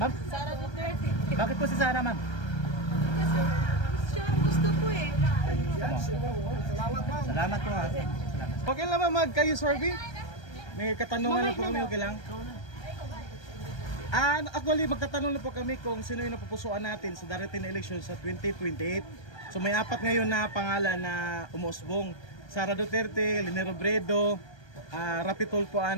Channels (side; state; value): right; late; 1.3 ms